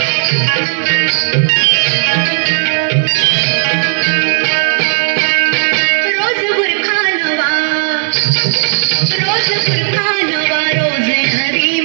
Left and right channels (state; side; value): silent; left; digital silence